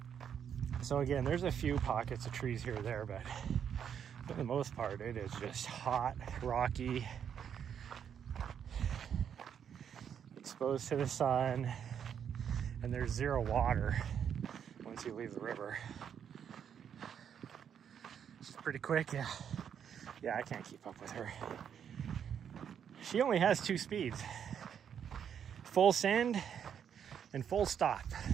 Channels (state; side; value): quieter; left; 8.3 dB